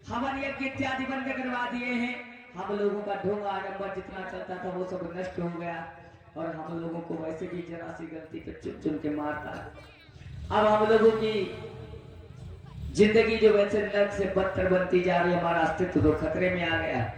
हवन यज्ञ इत्यादि बंद करवा दिए हैं। हम लोगों का ढोंग आडंबर जितना चलता था वो सब नष्ट हो गया और हम लोगों को वैसे भी जरा सी गलती पे चुन चुन के मारता है। अब हम लोगों की जिंदगी जो वैसे नर्क से बदतर बनती जा रही है, हमारा अस्तित्व तो खतरे में आ गया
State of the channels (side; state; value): both; identical; correlation 1.00